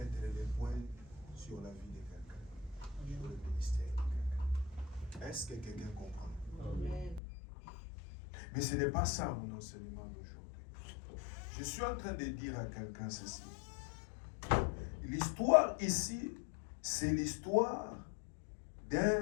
les points sur la vie de quelqu'un, sur le ministère de quelqu'un. Est-ce que quelqu'un comprend? Amen. Mais ce n'est pas ça mon enseignement d'aujourd'hui. Je suis en train de dire à quelqu'un ceci. L'histoire ici, c'est l'histoire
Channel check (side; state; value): right; drops out; at 7.2 s